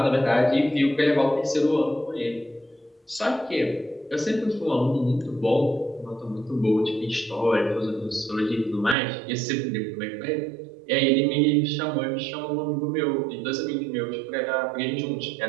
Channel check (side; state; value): left; drops out; at 9.0 s